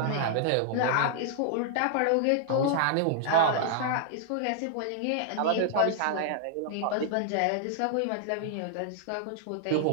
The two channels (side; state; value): both; different; correlation -0.01